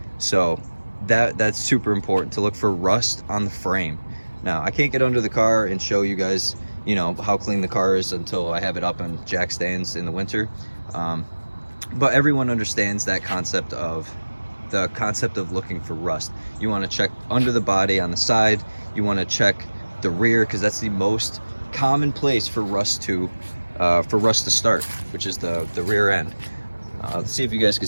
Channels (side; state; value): both; inverted; correlation -1.00